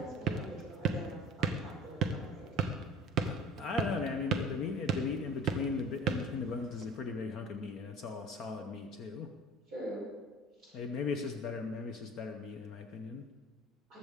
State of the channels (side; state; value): both; normal; correlation 0.44